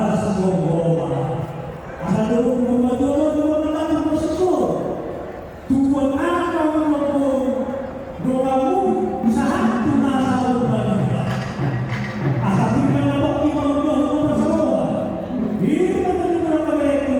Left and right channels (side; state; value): both; identical; correlation 1.00